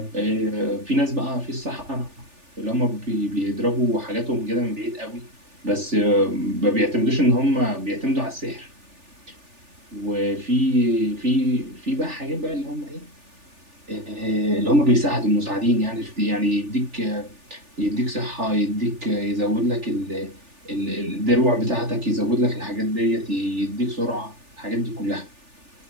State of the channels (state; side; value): late; left; 3.4 ms